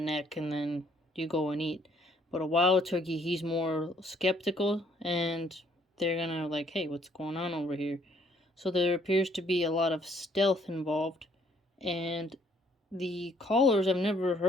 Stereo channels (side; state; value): both; normal; correlation 0.64